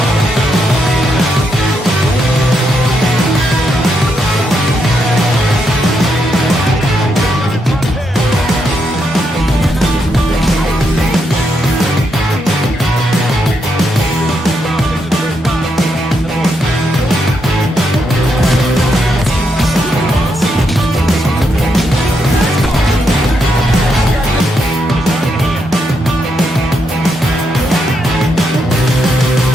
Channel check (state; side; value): normal; both; correlation 0.80